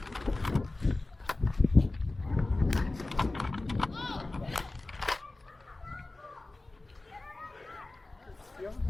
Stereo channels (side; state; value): right; quieter; 3.0 dB